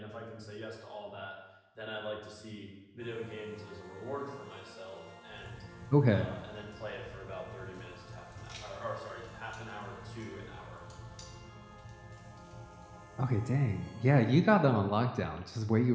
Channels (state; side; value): identical; both; correlation 1.00